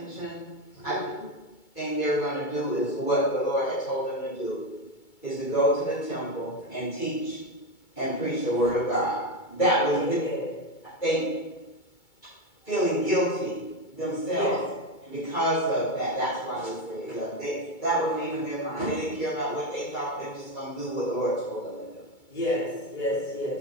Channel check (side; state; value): right; late; 2.2 ms